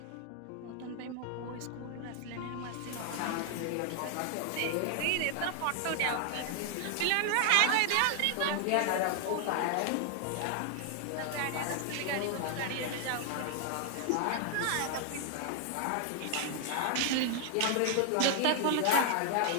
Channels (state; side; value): different; both; correlation 0.00